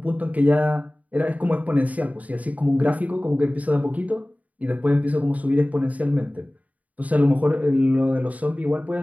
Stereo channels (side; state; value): left; late; 0.072 ms